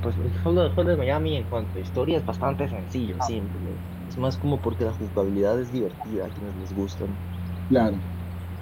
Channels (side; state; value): both; identical; correlation 1.00